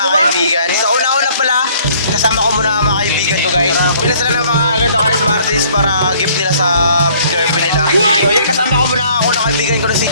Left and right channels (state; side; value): inverted; both; correlation -0.59